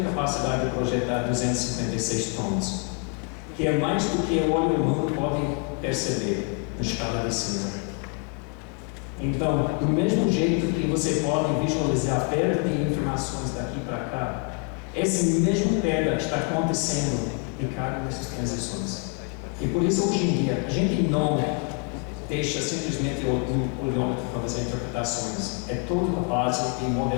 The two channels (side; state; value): right; quieter; 34.7 dB